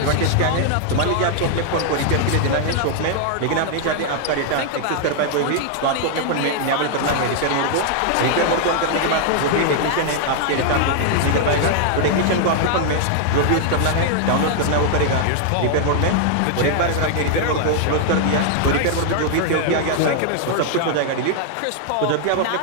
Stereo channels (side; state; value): both; different; correlation 0.00